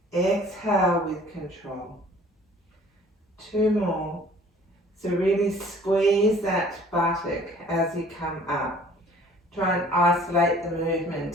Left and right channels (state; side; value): normal; both; correlation 0.53